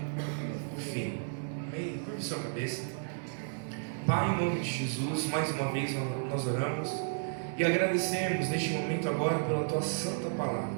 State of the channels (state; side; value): silent; left; 56 dB below the other